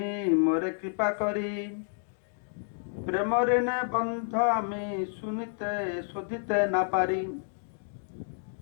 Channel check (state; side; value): silent; right; digital silence